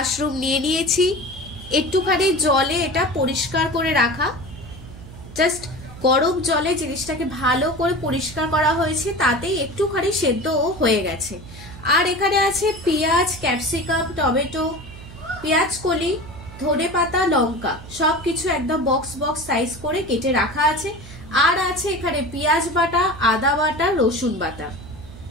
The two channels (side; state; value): right; noise; hum, 16 dB below the sound